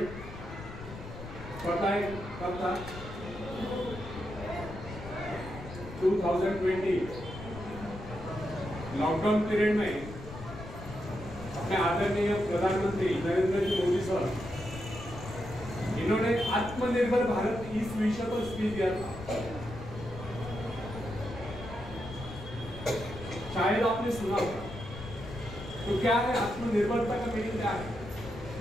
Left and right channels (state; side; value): noise; left; rumble, 12 dB below the sound